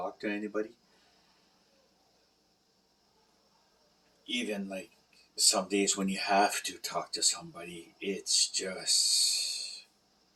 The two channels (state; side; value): identical; both; correlation 1.00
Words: to anybody. Even like some days when you have to talk to somebody, it's